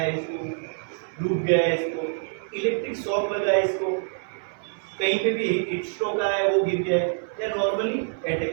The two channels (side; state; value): left; silent; 61 dB below the other